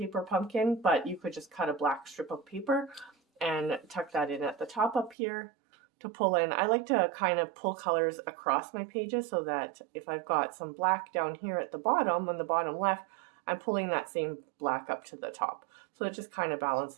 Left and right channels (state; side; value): drops out; left; at 5.2 s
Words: pumpkin, but you could just cut a black strip of paper and tuck that in at the top up here to pull in. I like to kind of pull colors across my pages so that if I've got some black down here at the bottom, on the bottom left, I'm pulling that same black up to the top. So it just kind of